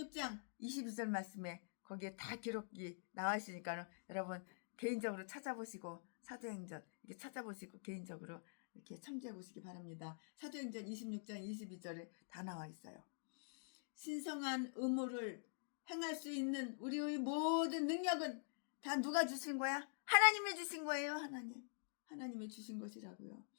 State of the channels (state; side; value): silent; right; digital silence